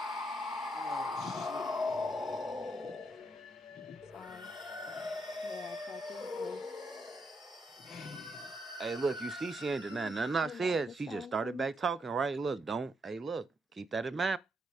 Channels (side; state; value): both; normal; correlation 0.78